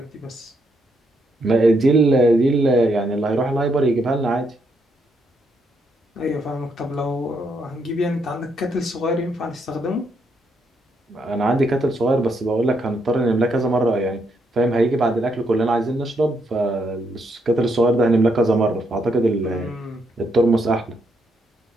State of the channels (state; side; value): normal; both; correlation 0.76